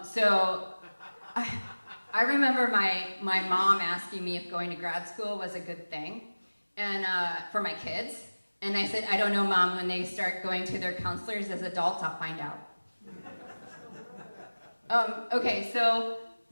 So I remember my mom asking me if going to grad school was a good thing and for my kids. And I said, I don't know, Mom, when they start going to their counselors as adults, I'll find out. Okay, so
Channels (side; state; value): both; inverted; correlation -1.00